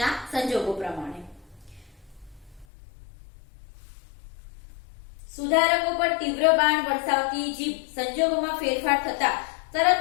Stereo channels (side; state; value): right; drops out; at 2.7 s